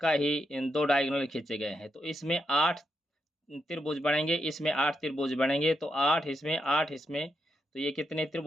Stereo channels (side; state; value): both; normal; correlation 0.83